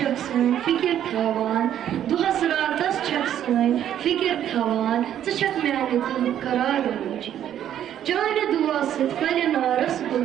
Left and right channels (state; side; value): quieter; left; 10.6 dB